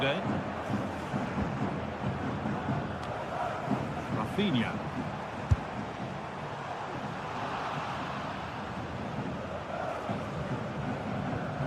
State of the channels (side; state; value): both; identical; correlation 1.00